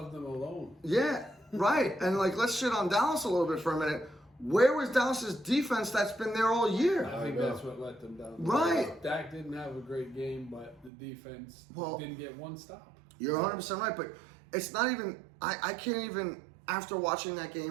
of them alone. yeah, right. And like, let's shit on Dallas a little bit for a minute. Where was Dallas's defense that's been there all year? I think that's what let them down. Right. Dak didn't have a great game, but the defense didn't get one stop. You're 100% right, but it's not even. I can't even, after watching that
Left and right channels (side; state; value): left; drops out; at 10.9 s